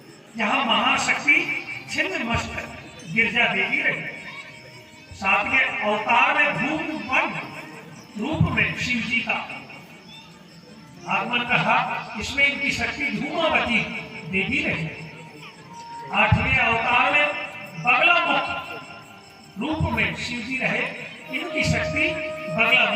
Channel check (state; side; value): identical; both; correlation 1.00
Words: यहाँ महाशक्ति छिन्नमस्तक गिरजा देवी रही। सातवें अवतार में धूम वन रूप में शिव जी का आगमन कहा, इसमें इनकी शक्ति धूमावती देवी रही। आठवें अवतार में बगलामुख रूप में शिव जी रहे, इनकी शक्ति